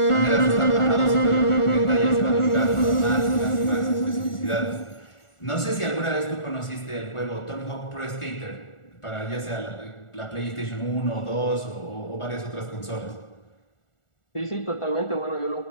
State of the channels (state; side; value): late; right; 1.4 ms